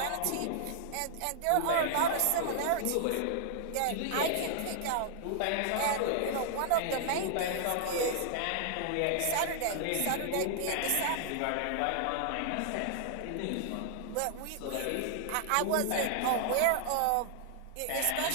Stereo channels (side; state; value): both; different; correlation -0.01